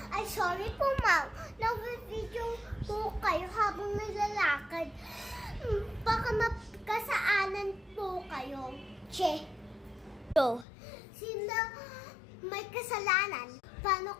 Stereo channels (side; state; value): right; drops out; at 10.7 s